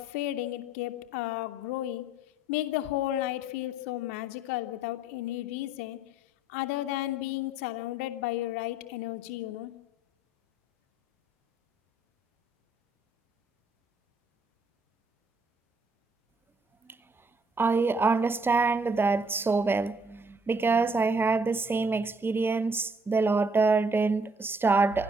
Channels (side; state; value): both; normal; correlation 0.64